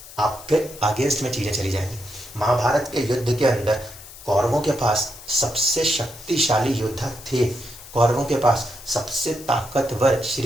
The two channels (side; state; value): left; noise; hiss, 17 dB below the sound